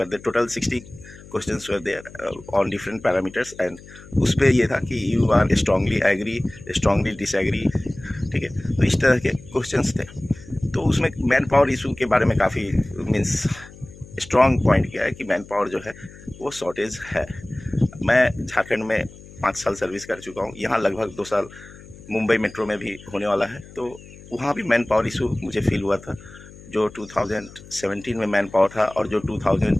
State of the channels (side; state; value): left; noise; hum, 19 dB below the sound